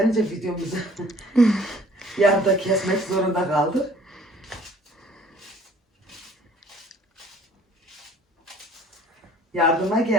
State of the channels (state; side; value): normal; both; correlation 0.55